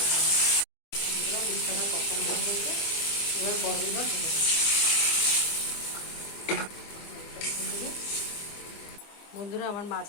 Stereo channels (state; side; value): late; right; 24 ms